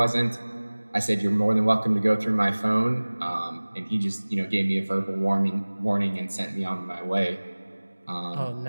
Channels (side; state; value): both; inverted; correlation -1.00